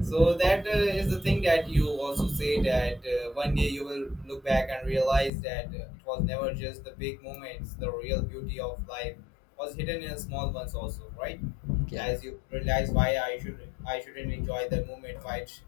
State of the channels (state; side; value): drops out; right; at 5.3 s